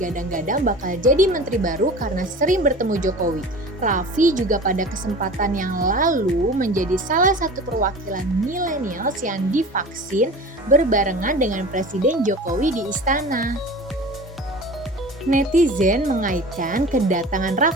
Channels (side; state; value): both; normal; correlation 0.38